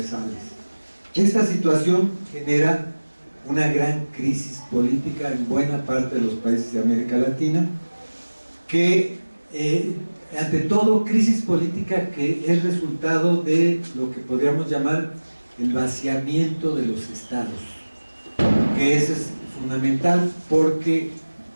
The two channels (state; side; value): inverted; both; correlation -1.00